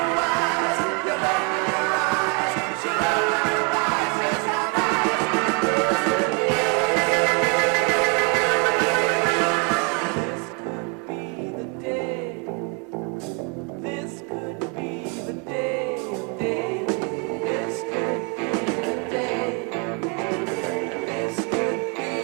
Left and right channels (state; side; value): quieter; left; 35.3 dB